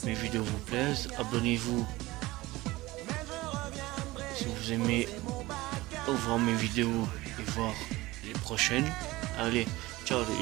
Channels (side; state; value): left; quieter; 19.5 dB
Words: mes vidéos vous plaisent. Abonnez-vous si vous aimez voir mes vidéos et voir les prochaines. Allez, ciao